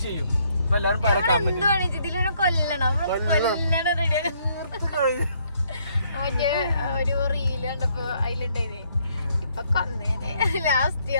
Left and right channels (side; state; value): both; inverted; correlation -0.69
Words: ചെയ്യും. അപ്പൊ എല്ലാരും ഒരു റീല് കണ്ടപ്പോ അതിലുണ്ടായിന് ഇപ്പൊ കൊന്നേനെ ലാസ്റ്റ്